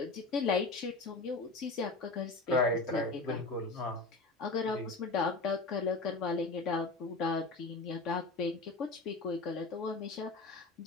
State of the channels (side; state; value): right; quieter; 3.4 dB